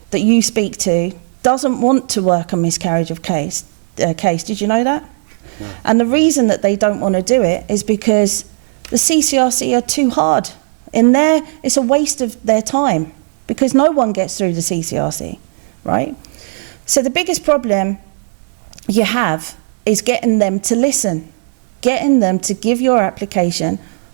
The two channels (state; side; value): silent; left; digital silence